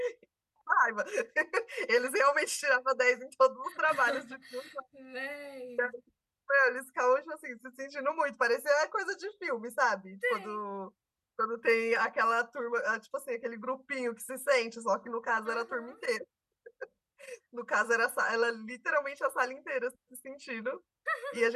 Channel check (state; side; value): identical; both; correlation 1.00